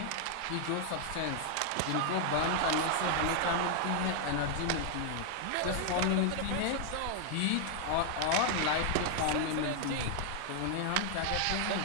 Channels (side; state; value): both; different; correlation 0.00